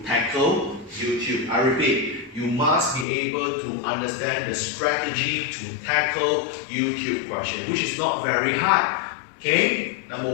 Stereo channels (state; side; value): drops out; right; at 3.1 s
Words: tackle YouTube. I repeat, you must be able to understand the strategy to tackle YouTube question, which is not very hard. Okay? Number